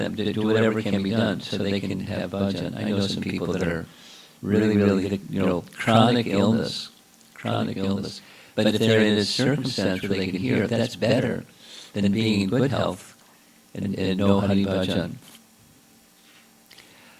to do whatever can be done so they can have bhajan. I know some people that are really, chronic illness. But if they're in a circumstance where they can hear, that's better than being in good health and no Hari Bhajan.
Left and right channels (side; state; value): both; identical; correlation 1.00